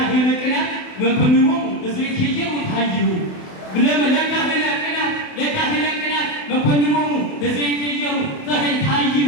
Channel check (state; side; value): late; right; 28 ms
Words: ቅናት መኮንኖሙ ለዘይትየው ታይሁ ለካህነ ቅናት መኮንኖሙ ለዘይትየው